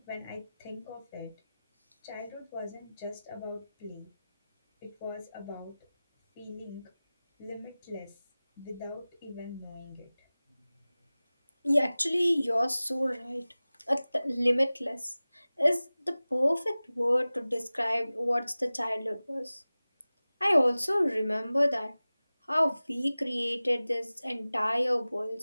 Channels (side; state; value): both; inverted; correlation -0.98